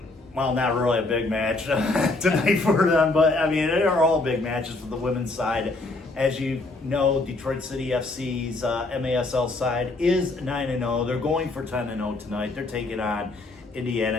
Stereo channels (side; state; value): right; quieter; 3.1 dB